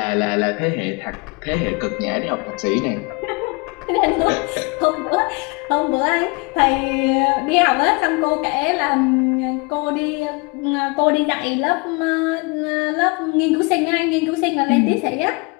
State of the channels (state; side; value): quieter; right; 29.7 dB